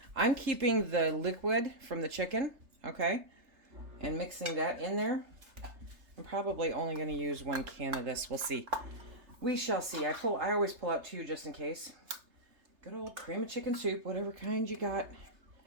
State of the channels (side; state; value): left; late; 3.3 ms